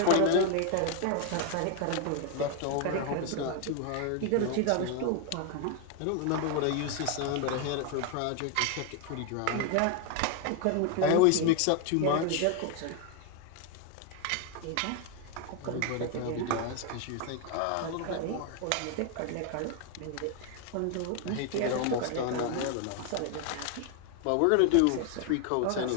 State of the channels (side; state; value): both; different; correlation 0.01